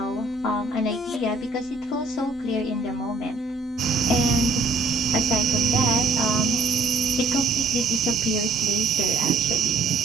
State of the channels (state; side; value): quieter; left; 3.3 dB